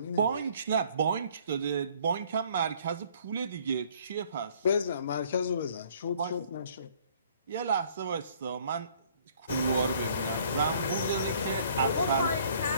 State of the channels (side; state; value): both; inverted; correlation -0.58